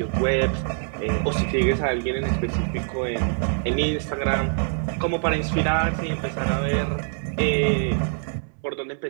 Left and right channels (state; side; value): silent; left; 62 dB below the other